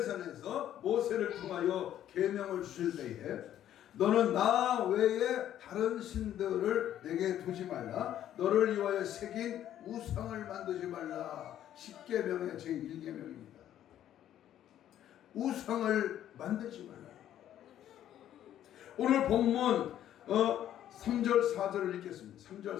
모세를 통하여 계명을 주실 때에 너는 나 외에 다른 신들을 내게 두지 말라. 너를 위하여 새긴 우상을 만들지 말라. 10계명의 제1계명입니다. 우상을 만들지 말라. 오늘 본문 3절 4절을 읽겠습니다. 3절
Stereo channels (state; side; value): quieter; right; 11.4 dB